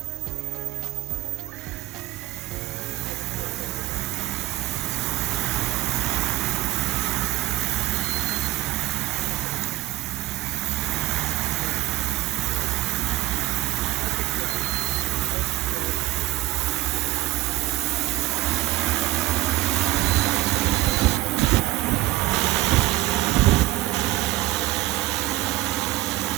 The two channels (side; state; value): left; quieter; 17.0 dB